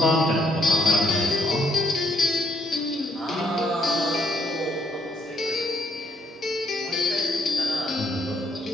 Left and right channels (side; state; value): both; normal; correlation 0.71